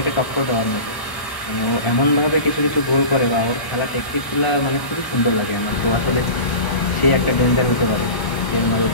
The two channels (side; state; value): right; late; 1.1 ms